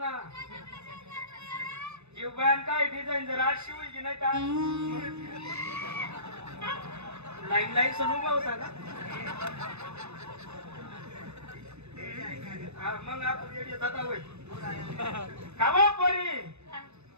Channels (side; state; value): left; late; 0.81 ms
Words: जीव बयान काय डिझाईन जर आज शिवली की नाही का लाईन सण उभा होता का हा मग आपण येडे जाता होय कावा पोरी